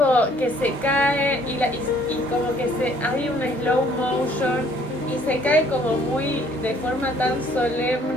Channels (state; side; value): normal; both; correlation 0.60